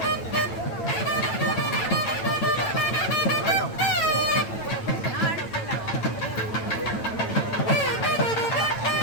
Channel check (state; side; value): late; right; 8.9 ms